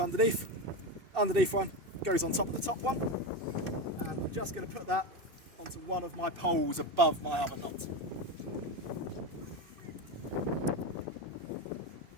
Underneath one goes on top of the top one. And I'm just going to put that onto one of my poles above my other knot.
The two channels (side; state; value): left; late; 2.7 ms